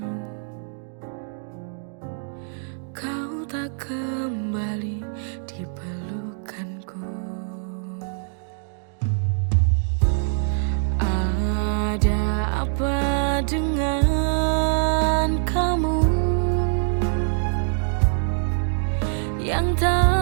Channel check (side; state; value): left; silent; digital silence